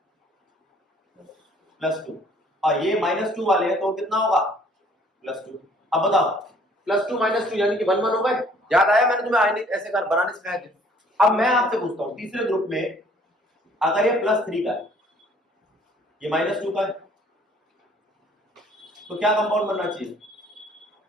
+2। और ये -2 वाले हैं तो कितना होगा, +2। अब बताओ, +2 -2 यानी कि 1 1 हो गए। याद आया, मैंने तुम्हें आयनिक ऐसे कर बनाने सिखाए थे। अब मैं आपसे पूछता हूं, तीसरे ग्रुप में अगर ये +3 का है, ये -2 का है, तो क्या कंपाउंड बनना चाहिए,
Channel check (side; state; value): both; normal; correlation 0.58